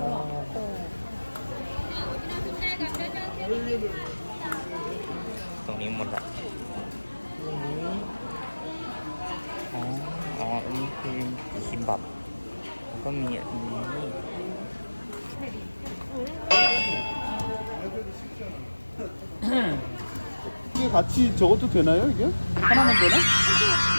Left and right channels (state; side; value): inverted; both; correlation -1.00